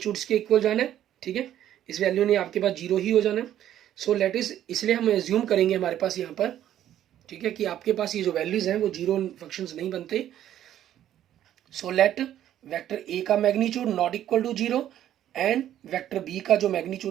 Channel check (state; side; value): quieter; left; 11.5 dB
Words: के इक्वल जाना है, ठीक है. इस वैल्यू ने आपके पास 0 ही हो जाना है. सो लेट इज, इसलिए हम एज्यूम करेंगे हमारे पास यहाँ पर, ठीक है, कि आपके पास ये जो वैल्यूज हैं वो 0 फंक्शंस नहीं बनते. सो लेट वेक्टर a का magnitude not equal to 0 and vector b का जो